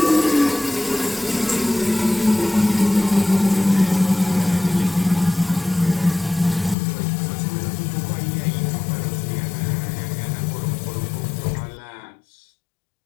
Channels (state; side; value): drops out; right; at 6.8 s